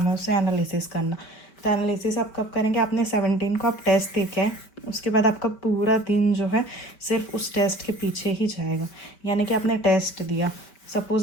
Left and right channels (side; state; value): right; late; 5.0 ms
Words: है उससे एनालिसिस करना। तो एनालिसिस आप कब करेंगे? आपने 17 को आप टेस्ट दे के आए, उसके बाद आपका पूरा दिन जो है सिर्फ उस टेस्ट के पीछे ही जाएगा। यानी कि आपने टेस्ट दिया,